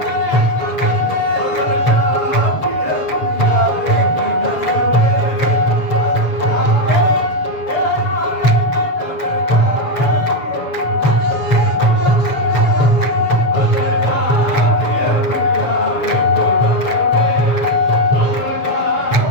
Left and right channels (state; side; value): late; right; 7.1 ms